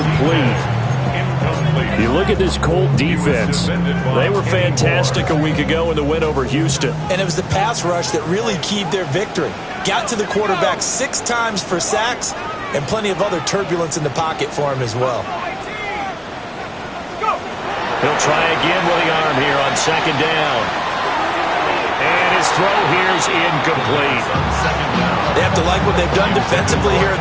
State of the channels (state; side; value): identical; both; correlation 1.00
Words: You look at this Colt defense. They were fantastic a week ago in the win over Houston. And it was the pass rush that really keyed their victory. Got to the quarterback 6 times for sacks, and plenty of other turbulence in the pocket for him as well. He'll try again with the arm here on 2nd down. And his throw here is incomplete. They have to like what they've done defensively here at